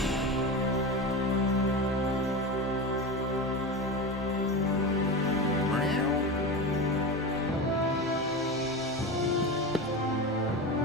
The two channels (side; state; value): both; normal; correlation 0.23